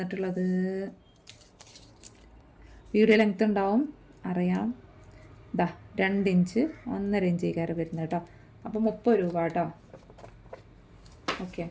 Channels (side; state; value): both; identical; correlation 1.00